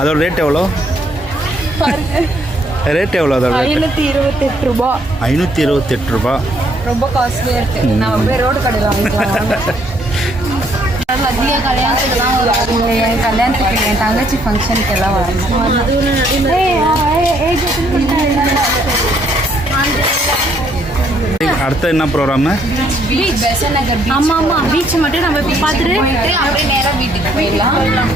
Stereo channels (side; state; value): both; normal; correlation 0.68